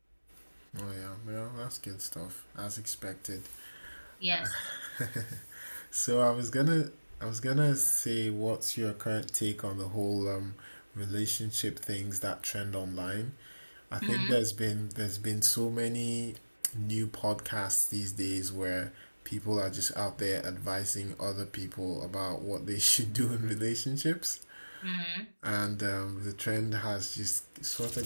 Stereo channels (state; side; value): inverted; both; correlation -1.00